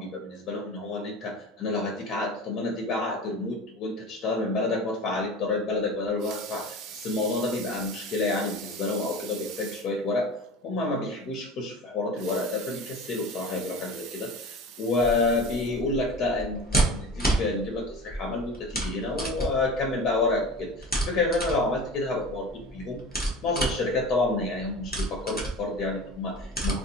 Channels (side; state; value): both; normal; correlation 0.35